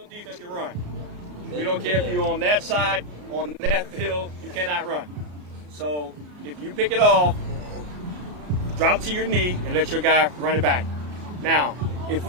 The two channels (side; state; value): left; late; 34 ms